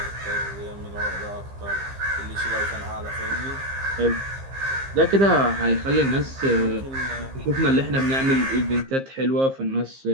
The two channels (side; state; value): left; late; 15 ms